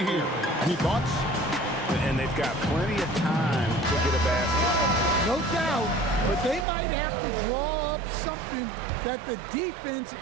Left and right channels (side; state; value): left; drops out; at 6.7 s